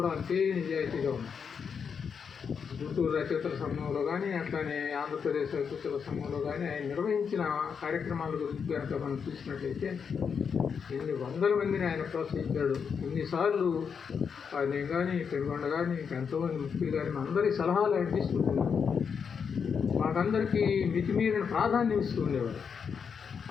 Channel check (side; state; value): right; quieter; 6.5 dB